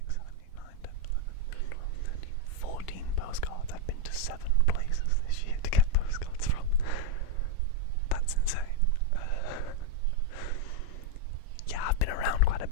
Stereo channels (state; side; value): different; both; correlation 0.03